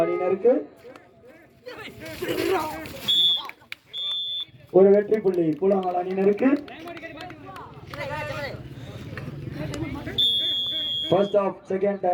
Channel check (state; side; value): identical; both; correlation 1.00